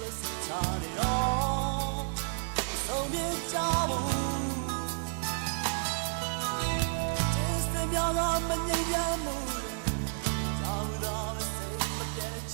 ို့စချာနေတော့ဆုံးပြေကြဘူးကျေးဇူးများကမငြိမ်းချမ်းမှုကြောက်တော့စိတ်မပြတ်ခ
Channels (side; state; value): left; silent; digital silence